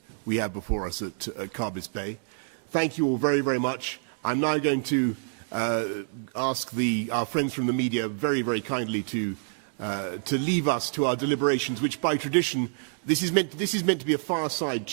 we have before us at Carbis Bay. Thank you all very, very much. I'm now going to ask our friends from the media very, very kindly to leave us to our deliberations, which by tradition, this is meant to be a fireside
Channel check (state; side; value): silent; left; digital silence